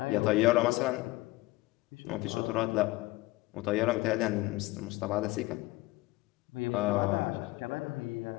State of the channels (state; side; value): quieter; right; 20.3 dB